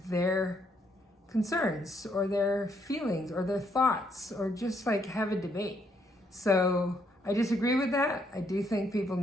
their concerns or their feelings or their thoughts or just like have a debate. So I disagree with that. I do think people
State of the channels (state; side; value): normal; both; correlation 0.72